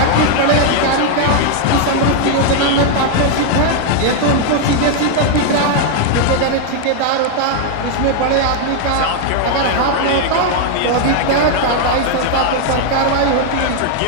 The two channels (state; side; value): different; both; correlation 0.00